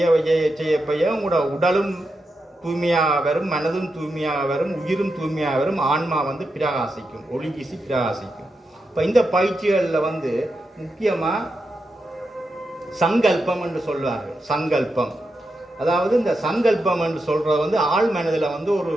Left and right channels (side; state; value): both; normal; correlation 0.87